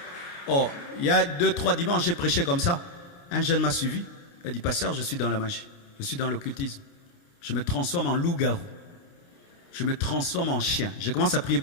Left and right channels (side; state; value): right; late; 29 ms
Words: Oh, il y a 2-3 dimanches, j'ai prêché comme ça. Un jeune m'a suivi. Il a dit, pasteur, je suis dans la magie. Je suis dans l'occultisme. Je me transforme en loup-garou. Je me transforme en chien. Je commence à prier